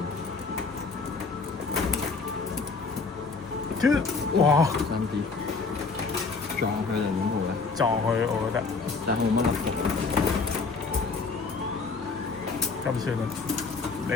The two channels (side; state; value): right; quieter; 4.4 dB